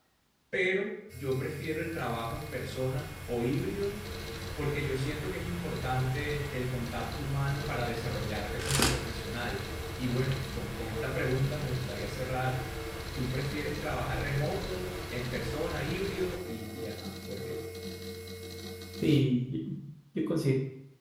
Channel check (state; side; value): identical; both; correlation 1.00